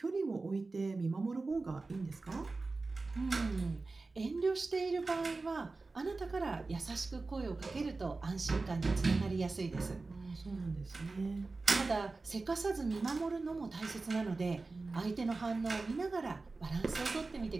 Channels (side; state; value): left; quieter; 3.7 dB